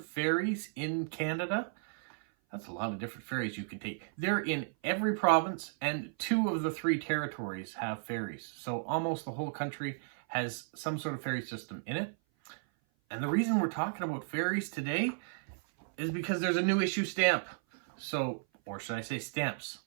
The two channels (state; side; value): silent; left; 55 dB below the other